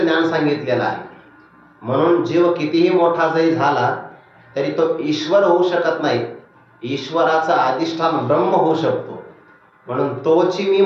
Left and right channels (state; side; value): identical; both; correlation 1.00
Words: सांगितलेलं आहे, म्हणून जीव कितीही मोठा जरी झाला तरी तो ईश्वर होऊ शकत नाही। ईश्वराचं अधिष्ठान ब्रह्म होऊ शकतो। म्हणून तोची मी